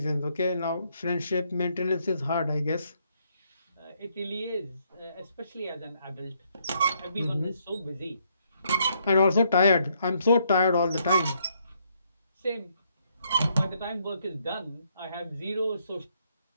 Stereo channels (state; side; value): inverted; both; correlation -0.73